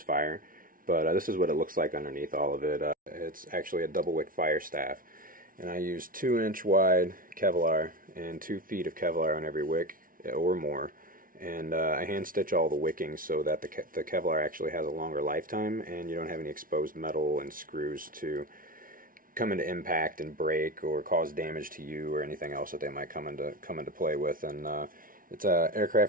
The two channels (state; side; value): late; left; 0.40 ms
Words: fire. But this is what it looks like underneath all of it. It's actually a double wick fire staff, and I use 2-inch wide Kevlar and 2 feet of Kevlar on every wick or more. And I hand stitch all the wicking so that the Kevlar actually has a longer lifetime, and you don't have any exposed metal and screws to come into impact and break or cause damage to you or anything else that they might come into play with. And it's